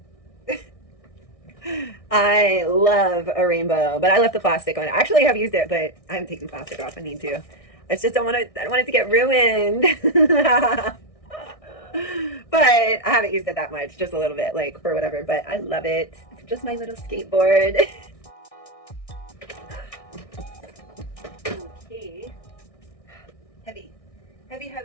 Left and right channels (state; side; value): late; right; 1.6 ms